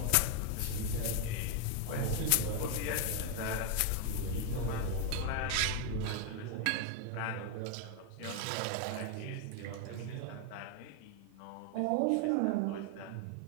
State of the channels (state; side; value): different; both; correlation 0.01